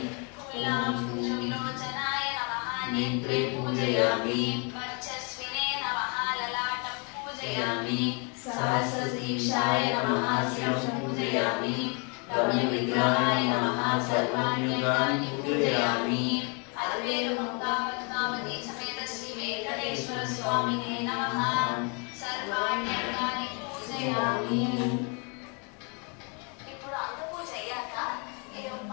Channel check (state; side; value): quieter; right; 35.1 dB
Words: फूलांशुविलोचनाय नमः नेत्रे पूजयामि वर्चस्विने नमः ललाटं पूजयामि सहस्रशीर्षाय नमः शिरं पूजयामि रम्यविग्रहाय नमः सर्वाण्यङ्गानि पूजयामि अल्वेलुमङ्गा पद्मावती समेत श्री वेंकटेश्वर स्वामिने नमः सर्वाण्यङ्गानि पूजयामि। ఇప్పుడు అంత పూజ అయ్యాక